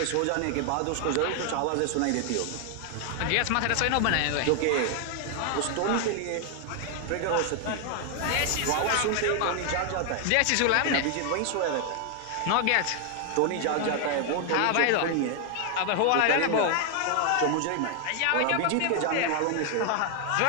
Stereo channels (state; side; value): different; both; correlation 0.00